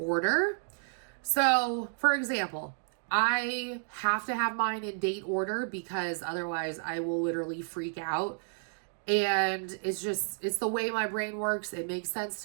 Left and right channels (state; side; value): silent; left; digital silence